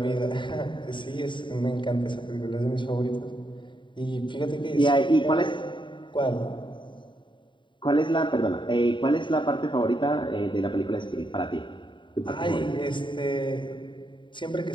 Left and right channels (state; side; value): late; right; 0.23 ms